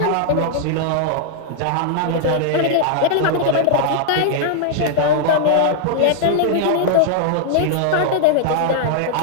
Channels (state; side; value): different; both; correlation -0.01